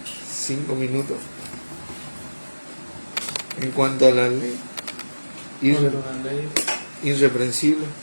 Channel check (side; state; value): both; inverted; correlation -1.00